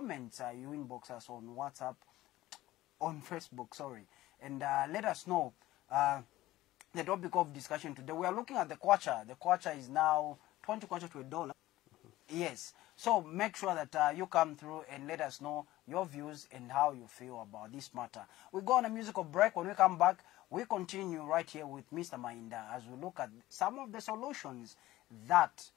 You inbox us on WhatsApp, on Facebook, sorry. And let us know the topic of discussion today. We are looking at the kwacha. The kwacha is now 20 kwacha to $1. Yes. So make sure that you come through and let us know your views and how you feel about this matter. We go on a musical break. When we come back, we continue right here with Mr. Mainda as we look at some of the solutions that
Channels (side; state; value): right; quieter; 16.4 dB